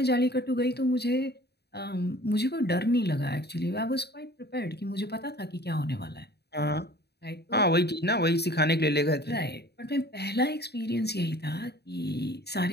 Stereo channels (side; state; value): right; late; 0.48 ms